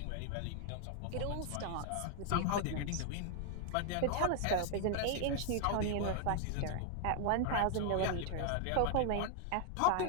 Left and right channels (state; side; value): different; both; correlation 0.00